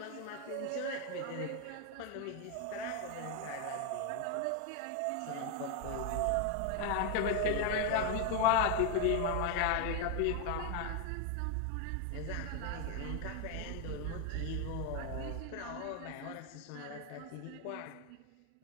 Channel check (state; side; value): different; both; correlation 0.01